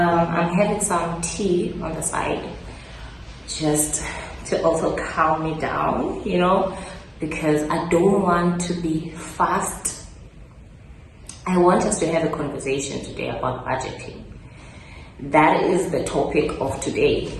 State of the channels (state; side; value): identical; both; correlation 1.00